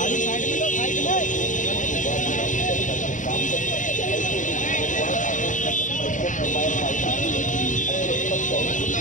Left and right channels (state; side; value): late; right; 0.37 ms